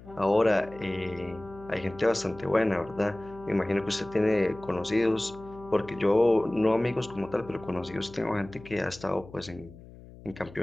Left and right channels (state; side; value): noise; left; hum, 19 dB below the sound